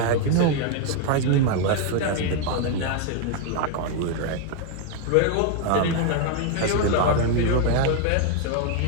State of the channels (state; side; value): different; both; correlation 0.01